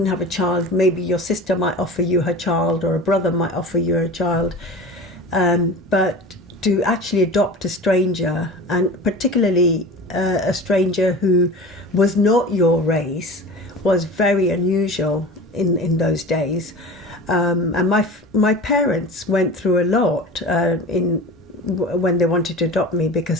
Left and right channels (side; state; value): both; normal; correlation 0.35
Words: have a child, maybe your sister might offer you her child or a brother might offer you a child. But to actually adopt a stranger, and particularly a stranger who was not your race, was very unusual in those days. And my parents went through a lot when they wanted to adopt me